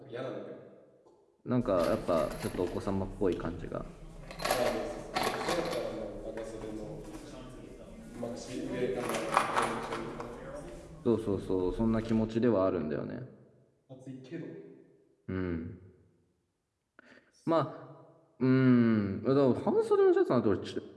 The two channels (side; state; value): both; identical; correlation 1.00